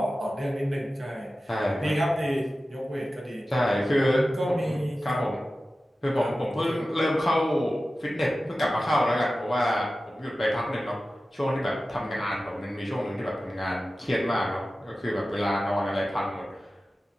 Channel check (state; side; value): normal; both; correlation 0.95